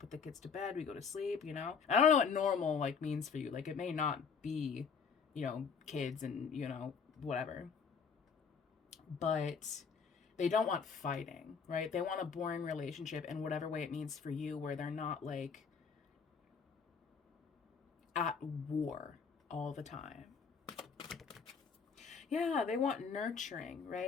the kids to bed, we go to sleep, you know? I don't know what normal like means for you. Like, it may not be, you know, kids and, you know, whatever. But they don't want fighting, right? They want a boring relationship in whatever way it means for you, where they're not like at war all the time. Yeah, they want nurturing,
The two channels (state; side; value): quieter; right; 5.9 dB